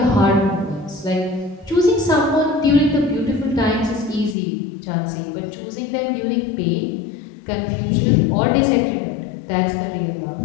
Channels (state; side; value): drops out; right; at 4.4 s